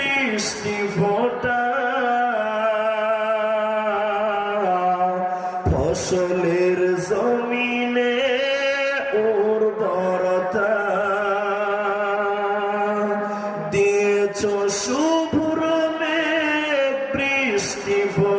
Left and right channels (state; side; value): identical; both; correlation 1.00